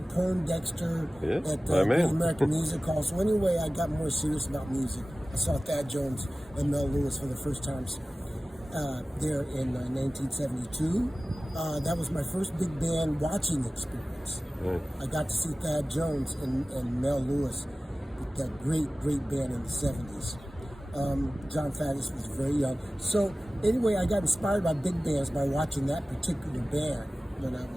Poindexter at the American Music Hall. So anyway, I got more serious about music. I saw Thad Jones and Mel Lewis for the first times there in 1972. That was my first big band watching experience. I got to see Thad Jones and Mel Lewis with that great band in the 70s. John Faddis was very young. So anyway, I got inspired by big bands by watching that particular band when I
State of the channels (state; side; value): normal; both; correlation 0.97